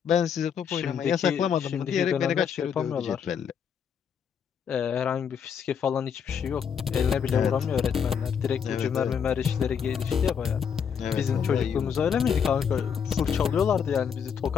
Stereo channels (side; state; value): right; quieter; 7.4 dB